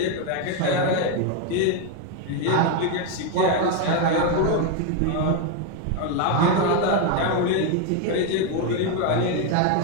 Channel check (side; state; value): both; different; correlation 0.02